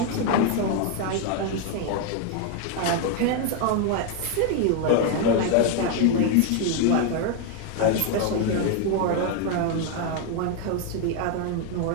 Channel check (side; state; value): both; different; correlation 0.01